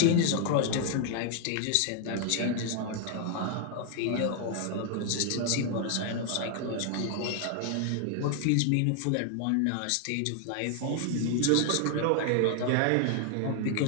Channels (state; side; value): different; both; correlation 0.00